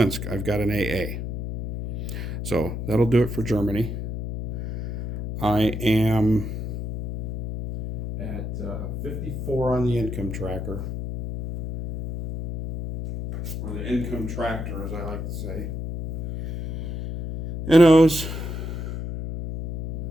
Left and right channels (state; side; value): noise; left; hum, 5 dB below the sound